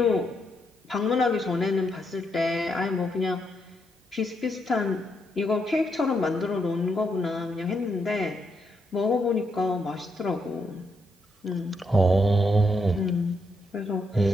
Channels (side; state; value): both; normal; correlation 0.79